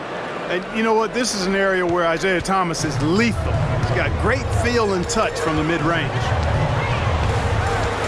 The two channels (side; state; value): both; identical; correlation 1.00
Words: And you know what? This is an area where Isaiah Thomas is lethal. He's got great feel and touch from the mid-range.